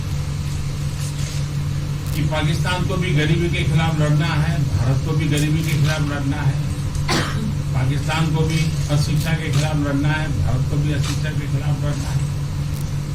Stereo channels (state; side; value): identical; both; correlation 1.00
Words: कि पाकिस्तान को भी गरीबी के खिलाफ लड़ना है, भारत को भी गरीबी के खिलाफ लड़ना है, पाकिस्तान को भी अशिक्षा के खिलाफ लड़ना है, भारत को भी अशिक्षा के खिलाफ लड़ना है,